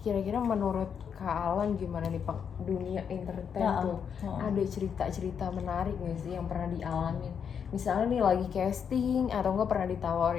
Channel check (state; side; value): quieter; right; 7.3 dB